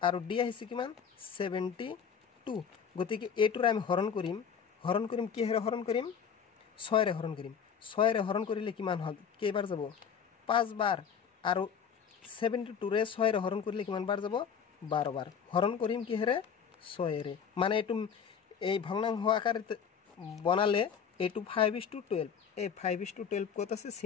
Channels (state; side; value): quieter; right; 7.2 dB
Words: আৰু d আহিছে কিমান 72 গতিকে a টোৰ আমি হৰণ কৰিম কি হেৰ হৰণ কৰিম 6 ৰে হৰণ কৰিম 6 ৰে হৰণ কৰিলে কিমান হ'ল কেইবাৰ যাব 5 বাৰ আৰু 72 ৰে 6 ৰে হৰণ কৰিলে কিমান বাৰ যাব 12 বাৰ হৰণ কৰিম কি হেৰে 6 ৰে মানে এটো এই ভগ্নাংশ আকারে বনালে এটো 5:12 এই 5:12 কত আছে